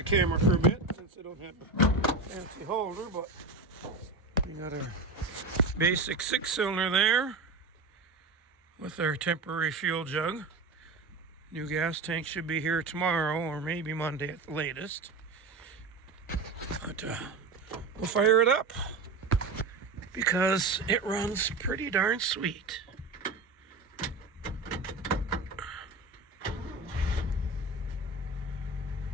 camera for a bit since I don't have a fancy holder, but we got our basic 6-cylinder there with our temporary fuel jug. New gas tank should be here tomorrow or maybe Monday at the latest. But we'll fire it up because it runs pretty darn sweet.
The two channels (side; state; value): left; quieter; 3.4 dB